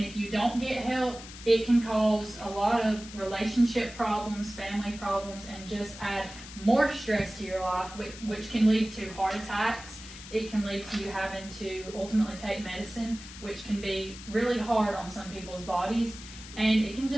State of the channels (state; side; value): noise; left; hiss, 15 dB below the sound